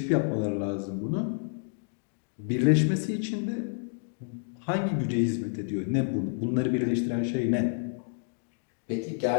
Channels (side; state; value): right; silent; digital silence